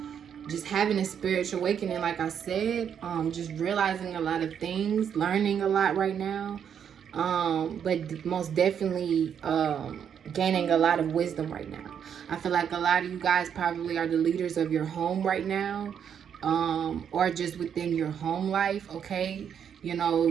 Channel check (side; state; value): left; quieter; 8.2 dB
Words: just having a spiritual awakening, like I said, just realizing a lot of things, learning a lot right now, but most definitely gaining a lot of wisdom right now. I feel like a lot of you guys probably are the leaders of your home right now, or just within your home life, okay? You know,